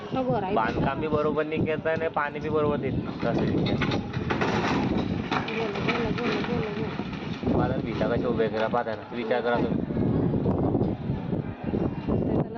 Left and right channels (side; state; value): both; identical; correlation 1.00